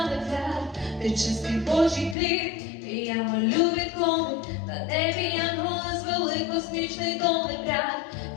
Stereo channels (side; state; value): right; drops out; at 2.1 s